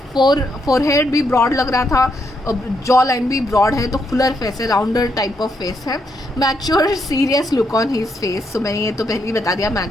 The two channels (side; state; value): both; normal; correlation 0.78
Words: फोरहेड भी ब्रॉड लग रहा था, जॉ लाइन भी ब्रॉड है, तो फुलर फेस है, राउंडर टाइप ऑफ फेस है। Mature serious look on his face, तो मैंने ये तो पहले ही बता दिया,